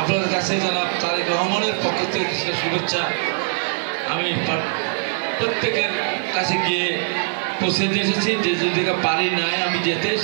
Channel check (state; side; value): silent; left; digital silence